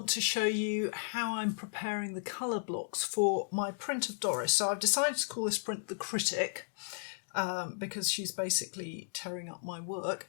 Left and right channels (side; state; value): right; silent; digital silence